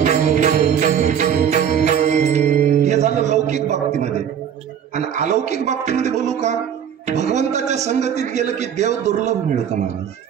हे झालं लौकिक बाबतीमध्ये. आणि अलौकिक बाबतीमध्ये बोलू का. भगवंताच्या संगतीत गेलं की देव दुर्लभ मिळतं महाराज.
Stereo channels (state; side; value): quieter; left; 8.7 dB